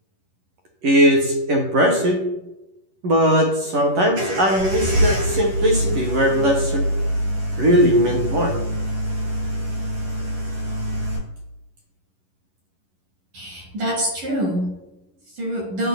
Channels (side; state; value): left; late; 11 ms